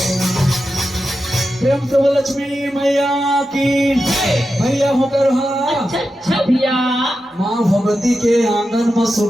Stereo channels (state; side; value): normal; both; correlation 0.90